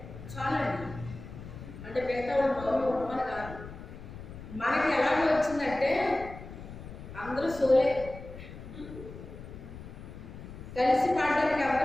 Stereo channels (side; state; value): left; noise; rumble, 13 dB below the sound